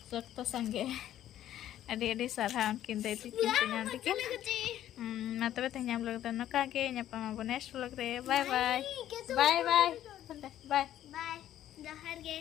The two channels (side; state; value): right; quieter; 12.0 dB